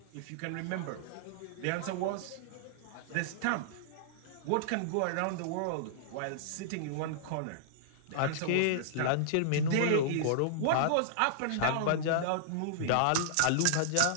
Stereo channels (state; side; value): different; both; correlation -0.02